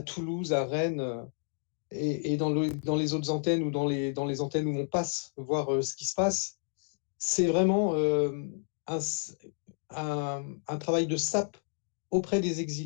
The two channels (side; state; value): right; silent; 57 dB below the other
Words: à Rennes, et dans les autres antennes ou dans les antennes où on passe, voir ce qui se passe, c'est vraiment un, un travail de sape auprès des